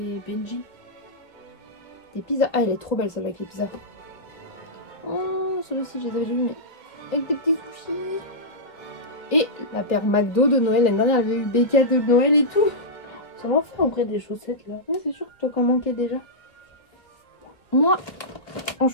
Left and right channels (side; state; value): right; late; 2.0 ms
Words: Benji. Des pizzas. Ah, elle est trop belle celle avec les pizzas. Oh, celle-ci, je les avais déjà vues, mais avec des petits sushis. Et la paire McDo de Noël. L'année dernière, elle avait eu des cadeaux de Noël et tout. Ça m'a fait en vrai des chaussettes là. Ouais, c'est sûr que toi, qu'en manquais déjà. Moi, en